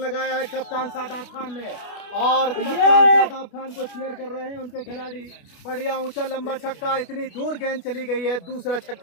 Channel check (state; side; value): late; right; 28 ms